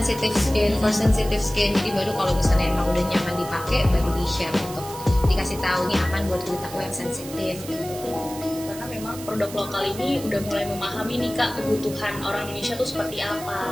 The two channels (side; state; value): right; noise; hiss, 14 dB below the sound